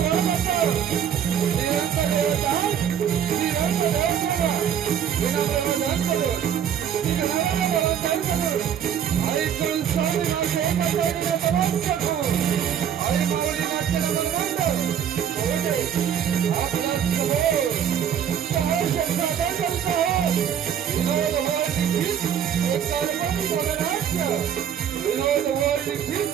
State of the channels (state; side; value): quieter; left; 8.8 dB